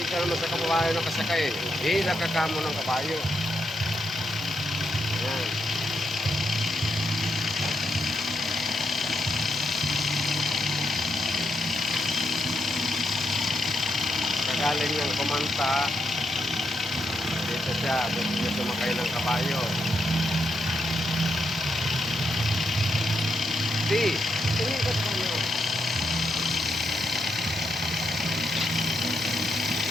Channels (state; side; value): noise; right; hum, 27 dB below the sound